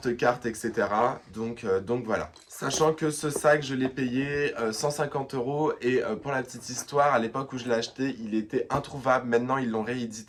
etc. Donc voilà. Sachant que ce sac, je l'ai payé 150 € et pour la petite histoire, à l'époque où je l'ai acheté, il était introuvable. Maintenant, ils l'ont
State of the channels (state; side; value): identical; both; correlation 1.00